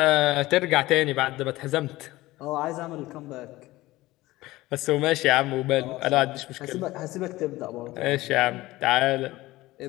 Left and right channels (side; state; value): right; quieter; 18.2 dB